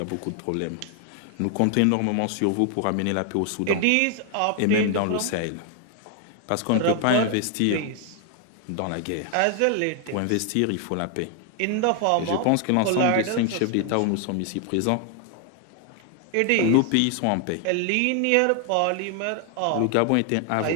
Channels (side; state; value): both; different; correlation 0.00